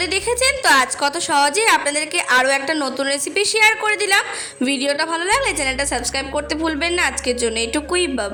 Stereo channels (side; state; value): both; identical; correlation 1.00